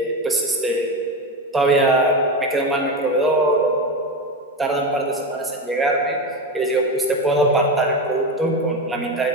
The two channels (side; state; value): both; normal; correlation 0.19